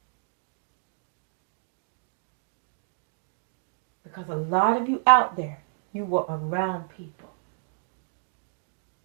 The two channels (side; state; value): left; silent; 58 dB below the other